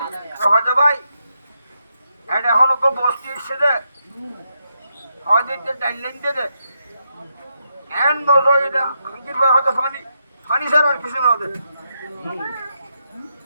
তো হয়তো ভাই এটা এখনো কেউ বসতি এসছে দে হয়তো ডাইলেন দে এন বসো এটা হয়তো ফানি ছাড়া আর কিছু না ওদের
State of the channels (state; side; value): inverted; both; correlation -0.83